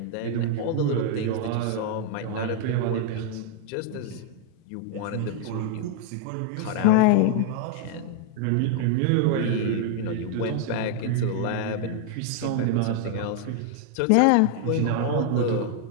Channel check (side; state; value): both; different; correlation 0.00